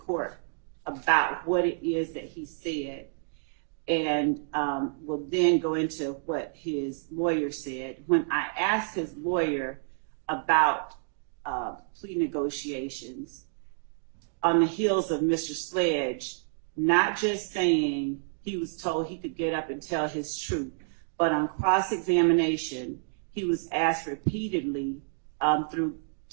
about what it is that he said, and we'll then go into what his lawyer said. When I asked his lawyer about plea negotiations on the heels of Mr. Sledge, not just saying he was told he could get up and tell his truth, but on cross-examination, he was asked repeatedly through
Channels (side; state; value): left; silent; digital silence